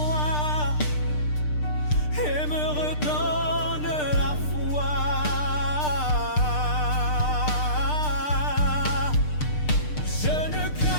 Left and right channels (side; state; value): right; late; 6.7 ms